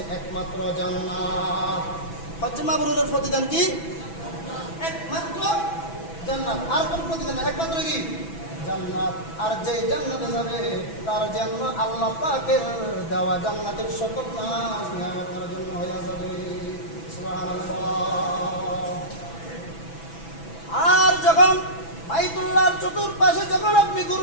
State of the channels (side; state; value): right; late; 6.0 ms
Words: একমাত্র জান্নাত। হজ্জে মাবরুরের প্রতিদান কি? একমাত্র জান্নাত। আর কোন প্রতিদান? একমাত্র কি? জান্নাত। আর যে জান্নাতে যাবে তার জন্য আল্লাহ পাকের দেওয়া জান্নাতের সকল নাজ নিয়ামত তার জন্য হয়ে যাবে। সুবহানাল্লাহ। আর যখন বাইতুল্লাহর চতুর্পাশে যখন আপনি